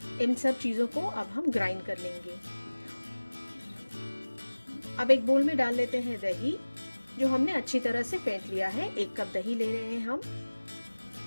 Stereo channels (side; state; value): both; inverted; correlation -1.00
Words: इन सब चीज़ों को अब हम ग्राइंड कर लेंगे। अब एक बोल में डाल लेते हैं दही, जो हमने अच्छी तरह से फेंट लिया है। 1 कप दही ले रहे हैं हम।